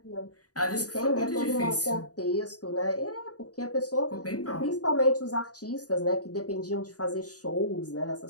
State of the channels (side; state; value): right; late; 0.68 ms